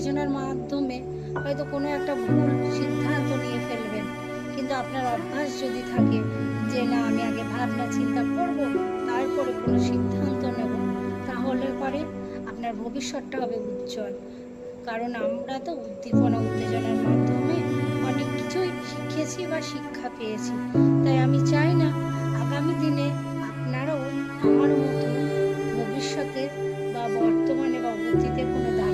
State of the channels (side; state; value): both; identical; correlation 1.00